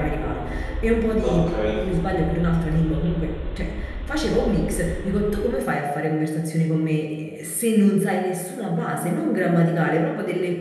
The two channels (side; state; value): both; identical; correlation 1.00